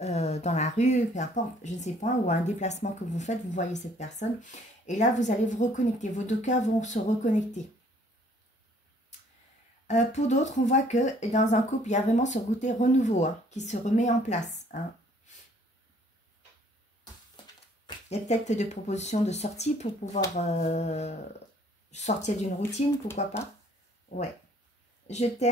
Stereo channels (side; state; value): both; normal; correlation 0.60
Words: dans la rue, peu importe, je ne sais pas, ou un déplacement que vous faites, vous voyez cette personne. Et là, vous allez vous reconnecter. Vos deux cœurs vont se reconnecter. Pour d'autres, on voit que dans un couple, il y a vraiment ce côté renouveau hein, qui se remet en place. Hein. Il y a peut-être des propositions de sortie pour pouvoir sortir d'une routine, pourquoi pas. Ouais. Je